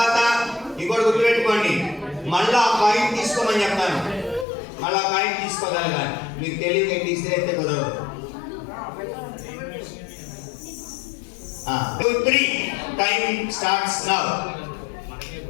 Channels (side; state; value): right; drops out; at 4.5 s